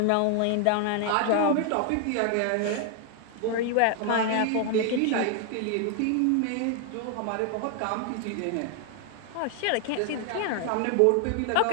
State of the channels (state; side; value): different; both; correlation 0.00